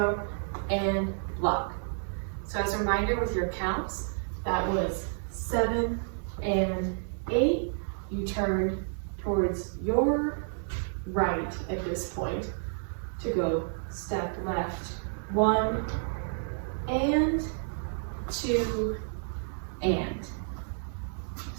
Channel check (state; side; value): silent; left; 58 dB below the other